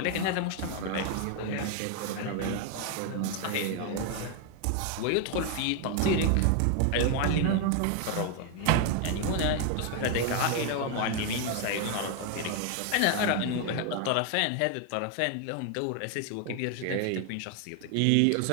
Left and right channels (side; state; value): both; different; correlation 0.01